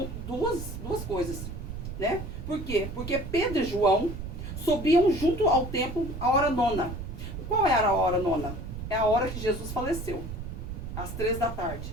duas coisas, né? Por quê? Porque Pedro e João subiam junto ao templo à hora nona. Qual era a hora nona? É a hora que Jesus faleceu. Às 3 da tarde.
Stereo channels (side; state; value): right; noise; rumble, 8 dB below the sound